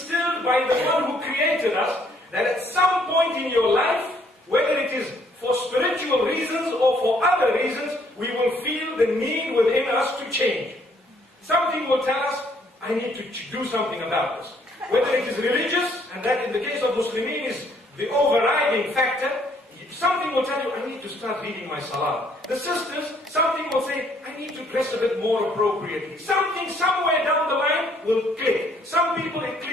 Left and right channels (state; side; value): normal; both; correlation 0.66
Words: by the one who created us, that at some point in your life, whether it is for spiritual reasons or for other reasons, we will feel the need within us to change. Something will tell us, I need to do something about this. Whether it is religious, and that in the case of Muslimin is the overriding factor, something will tell you, I need to start reading my salah. The sisters, something will say, I need to dress a bit more appropriately. Something somewhere down the line will click. Some people it